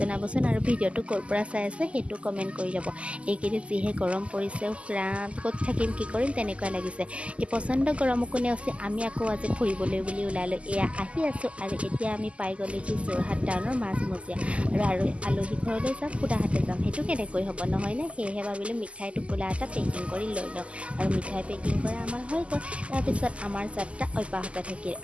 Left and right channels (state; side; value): late; left; 0.058 ms